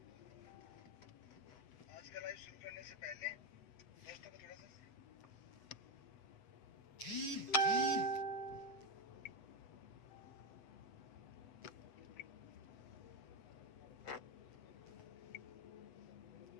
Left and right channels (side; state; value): right; late; 8.0 ms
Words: आज का लाइव शुरू करने से पहले दोस्तों को थोड़ा सा